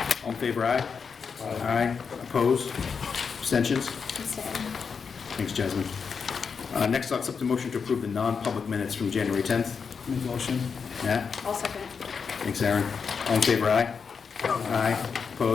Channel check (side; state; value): right; quieter; 5.9 dB